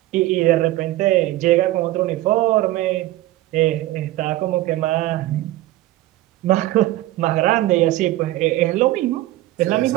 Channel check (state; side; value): quieter; left; 16.3 dB